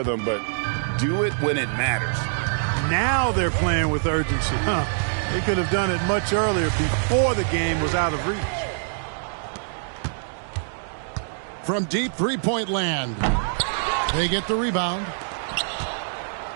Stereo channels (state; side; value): silent; left; digital silence